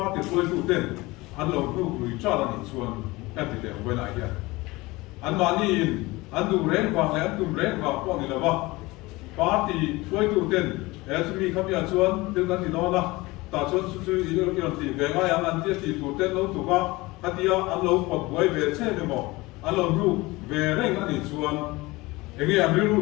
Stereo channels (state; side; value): quieter; right; 21.6 dB